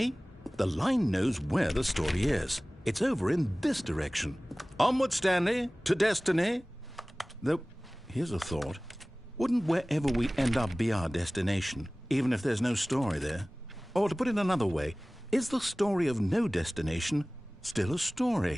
The line knows where the story is. It's over in this direction. Onward, Stanley, to destiny. Though, here's a thought. Wouldn't wherever we end up be our destination, even if there's no story there? Or to put it another way, is the story of no destination still a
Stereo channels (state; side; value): normal; both; correlation 0.98